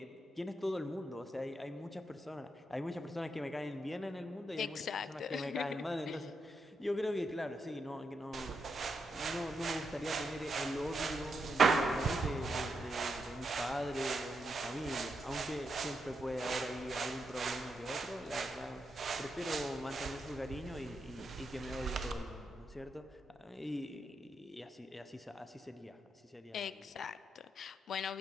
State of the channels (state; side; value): normal; both; correlation 0.83